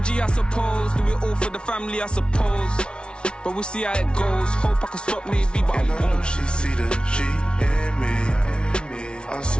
I suppose. Do it all for the family, I suppose. But we'll see how it goes. Hope I can stop maybe, but I won't. She see the G in me. I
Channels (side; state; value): right; late; 0.056 ms